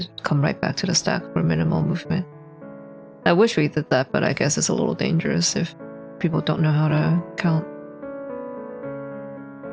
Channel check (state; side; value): identical; both; correlation 1.00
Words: come right back to the stack for minimal movement. I wish we did that, but I guess it's a little dangerous if people don't know how to count.